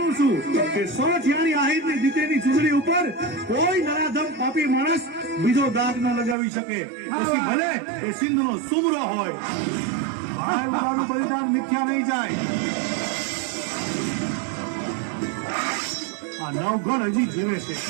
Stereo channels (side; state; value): left; drops out; at 6.4 s